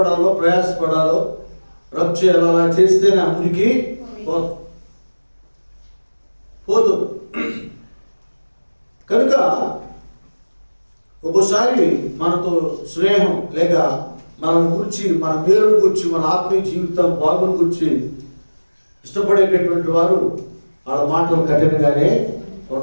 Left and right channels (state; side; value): inverted; both; correlation -1.00